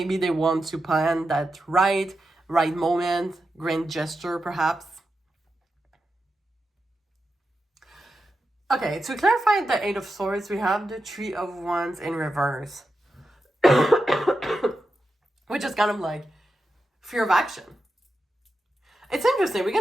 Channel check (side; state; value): both; normal; correlation 0.89